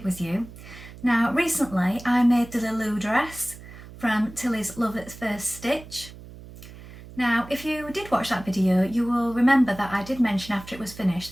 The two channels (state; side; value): noise; right; hum, 17 dB below the sound